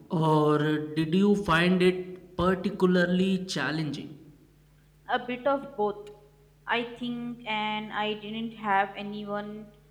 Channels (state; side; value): identical; both; correlation 1.00